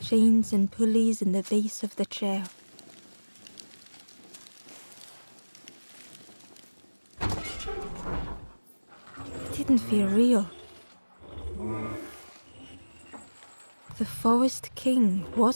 Chains and pulleys in the base of the chair. It didn't feel real. The Forest King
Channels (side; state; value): both; inverted; correlation -1.00